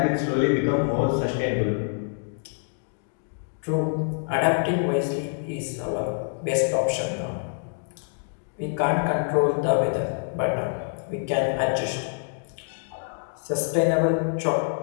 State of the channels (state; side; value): silent; right; digital silence